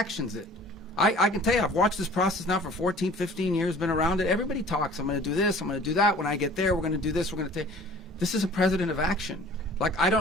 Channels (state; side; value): normal; both; correlation 0.48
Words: it. I can tell you, I've watched this process now for 14, 15 years, been around it. Everybody talks, I'm going to do this, I'm going to do that. When I get there, we're going to do this, we're going to take. This is a president of action. Like, I